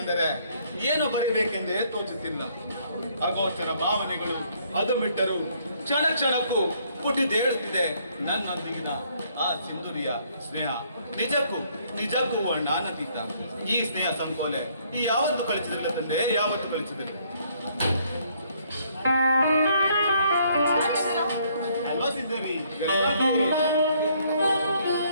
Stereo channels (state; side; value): inverted; both; correlation -0.66